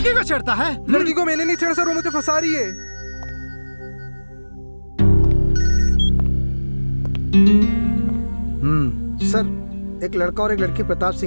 को छेड़ता है? लड़की को मैंने नहीं छेड़ा सर, वो मुझे फंसा रही है। सर, एक लड़का और एक लड़की प्रताप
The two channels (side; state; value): both; inverted; correlation -1.00